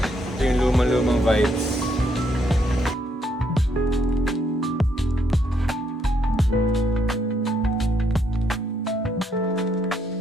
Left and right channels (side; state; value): both; normal; correlation 0.73